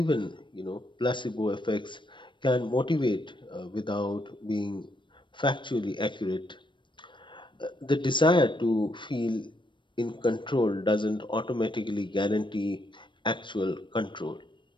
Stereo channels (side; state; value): right; late; 0.23 ms